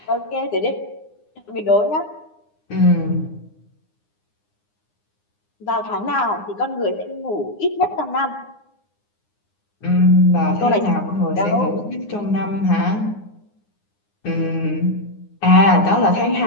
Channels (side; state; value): right; late; 9.7 ms